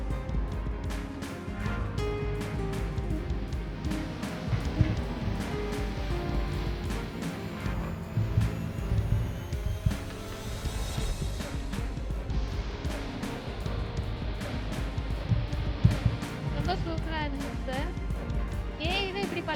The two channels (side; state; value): both; identical; correlation 1.00